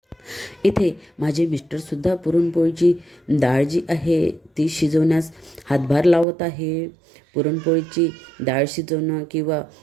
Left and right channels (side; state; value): left; drops out; at 6.2 s